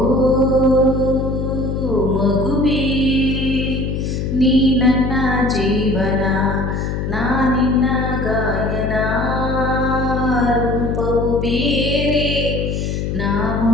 ಮಗುವೇ, ನೀ ನನ್ನ ಜೀವನ, ನಾನಿನ್ನ ಗಾಯನ. ರೂಪವು ಬೇರೆ,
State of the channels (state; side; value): noise; left; hum, 2 dB below the sound